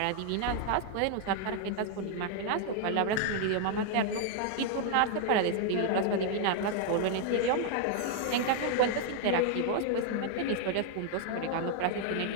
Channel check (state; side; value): different; both; correlation 0.00